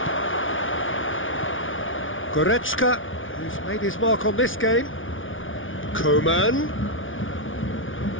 Goretzka, who's made his mark on this game. Coman.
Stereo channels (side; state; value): right; late; 0.57 ms